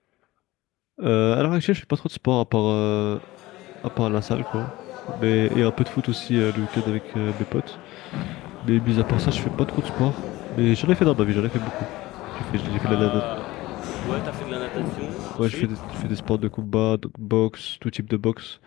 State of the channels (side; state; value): right; quieter; 18.5 dB